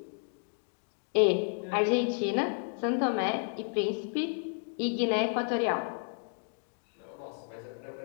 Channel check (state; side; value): silent; right; 56 dB below the other